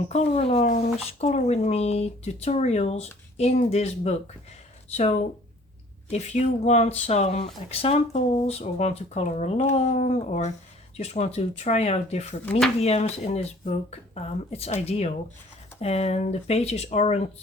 color alongs, color with me, tutorials in this book. So if you want some examples or want to color along or just want to try out different mediums in this book, it's ideal. And the pages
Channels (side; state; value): both; normal; correlation 0.54